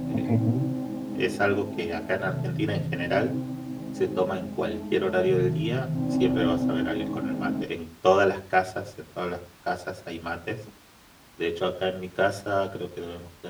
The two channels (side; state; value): both; identical; correlation 1.00